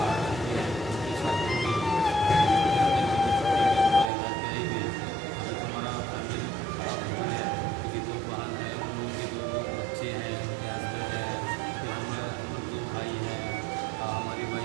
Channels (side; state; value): left; drops out; at 4.1 s